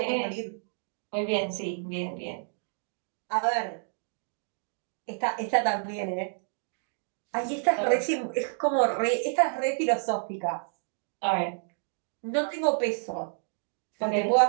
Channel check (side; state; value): left; silent; digital silence